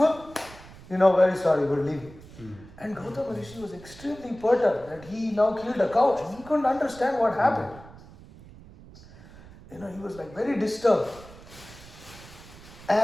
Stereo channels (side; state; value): right; noise; rumble, 20 dB below the sound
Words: Very sorry, we're leaving. And Gautama Rishi was extremely perturbed that he now killed a cow. And he couldn't understand what happened. He was like very disturbed.